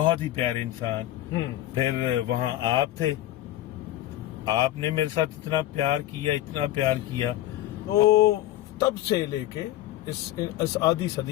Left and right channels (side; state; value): right; quieter; 14.1 dB